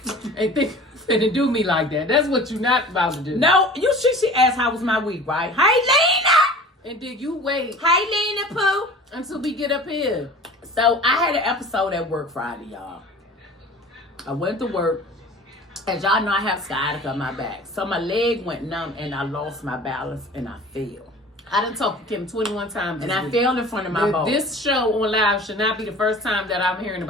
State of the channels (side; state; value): both; normal; correlation 0.42